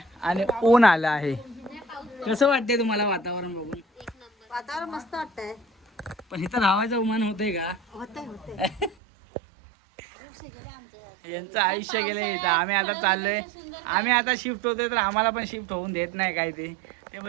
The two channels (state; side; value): drops out; left; at 9.0 s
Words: आणि ऊन आलं आहे. कसं वाटतंय तुम्हाला वातावरण बघून? वातावरण मस्त वाटतंय. पण इथं राहायचं उमान होतंय का? होतंय यांचं आयुष्य गेलंय इथं. आम्ही आता चाललोय. आम्ही आता शिफ्ट होतोय तर आम्हाला पण शिफ्ट होऊन देत नाही काय ते